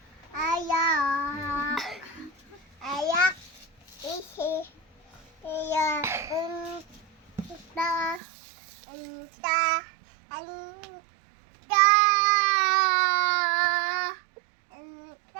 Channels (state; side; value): drops out; left; at 8.2 s